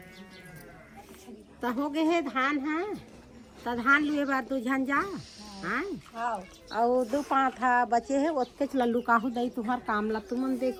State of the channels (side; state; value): both; identical; correlation 1.00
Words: तो हो गए हे धान है तो धान लुए बार दू झन जा हाँ और दो पाँच था बचे है ओतके लल्लू काहू दई तुम्हार काम ला तुमन